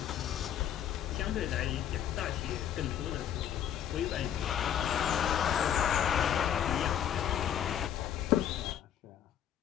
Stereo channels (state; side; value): quieter; right; 9.9 dB